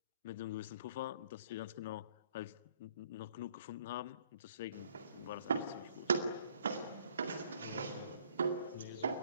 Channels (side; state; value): both; inverted; correlation -0.62